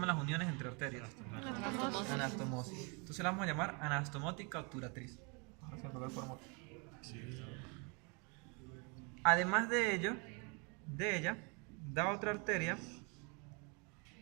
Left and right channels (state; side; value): quieter; left; 32.8 dB